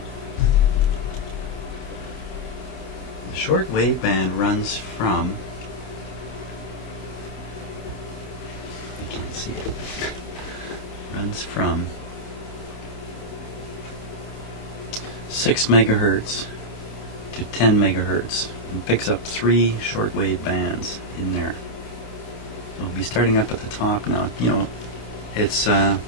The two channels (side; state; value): right; late; 28 ms